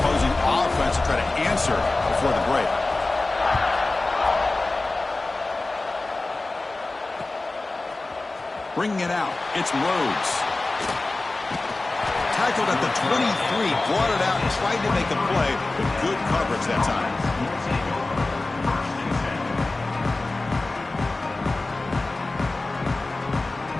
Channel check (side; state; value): right; quieter; 3.2 dB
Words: offense to try to answer before the break. Bringing it out, it's Rhodes. Tackled at the 23, brought it out and tried to make a play with good coverage that time.